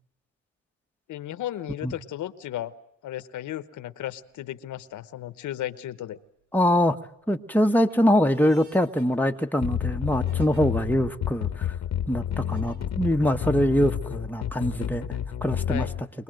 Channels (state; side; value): normal; both; correlation 0.78